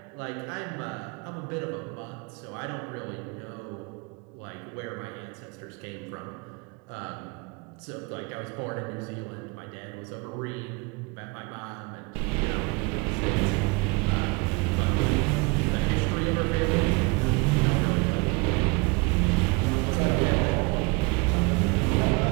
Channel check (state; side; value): quieter; left; 28.2 dB